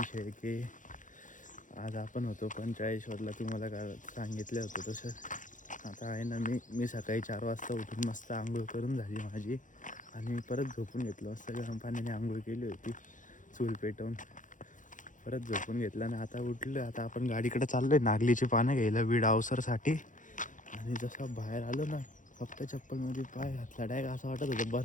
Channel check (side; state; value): right; late; 0.37 ms